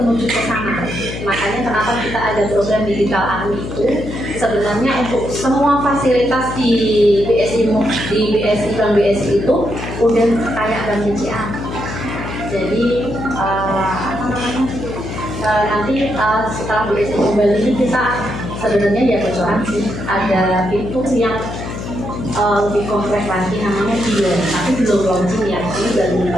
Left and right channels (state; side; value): noise; left; hum, 7 dB below the sound